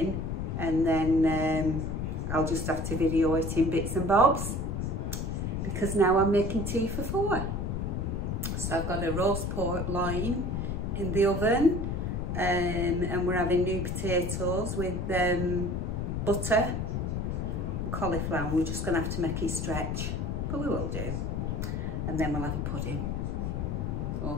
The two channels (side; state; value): left; noise; rumble, 1 dB below the sound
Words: and then I'll just have to video it in bits and bobs, because now I'm making tea for 4. So I've got a roast pork loin in the oven, and we're having new potatoes with butter and cauliflower. We're just going to have to make it stretch, but we will do. And then we'll have a pudding.